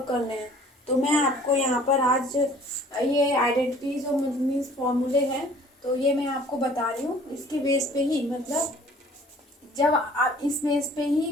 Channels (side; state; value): both; normal; correlation 0.52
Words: करने हैं। तो मैं आपको यहाँ पर आज ये आइडेंटिटीज और मीन्स फॉर्मूले हैं, तो ये मैं आपको बता रही हूँ। इसके बेस पे ही मतलब जब आप इस बेस पे